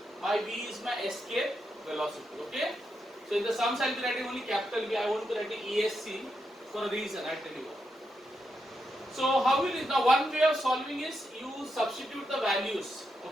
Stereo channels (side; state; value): both; normal; correlation 0.84